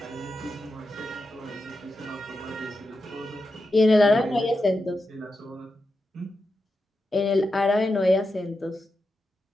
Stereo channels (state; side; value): normal; both; correlation 0.88